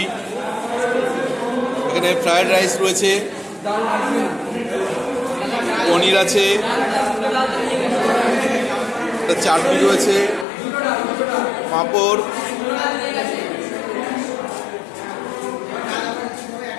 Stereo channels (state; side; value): drops out; right; at 10.5 s